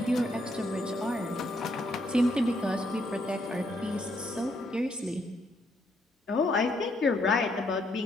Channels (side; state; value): both; normal; correlation 0.73